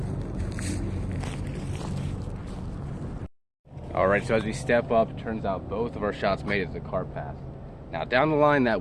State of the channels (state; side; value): identical; both; correlation 1.00